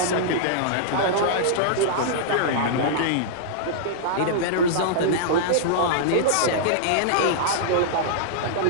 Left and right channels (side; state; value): both; different; correlation -0.02